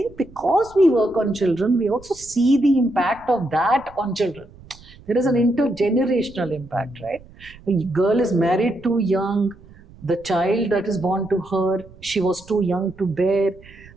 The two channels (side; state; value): right; noise; rumble, 22 dB below the sound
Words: because we work on children, we also see the impact of that on children. There is an intergenerational impact, right? A girl is married too young, the child that is born to her, she was too young to bear,